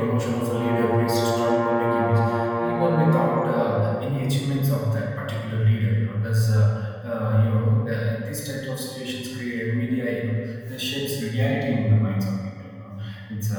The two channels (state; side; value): identical; both; correlation 1.00